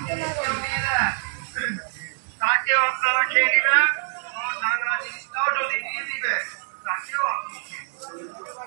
কেউ দিয়ে দেন তাকেও আপনারা খেয়ে নেবেন, নানা জিনিসটাও যদি দিয়ে দিবে তাকেও আপনি খেয়ে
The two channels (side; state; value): left; silent; digital silence